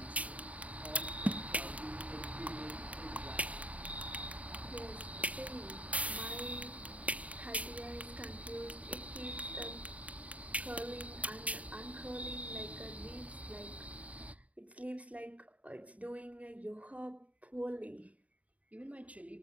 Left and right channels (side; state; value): left; late; 0.068 ms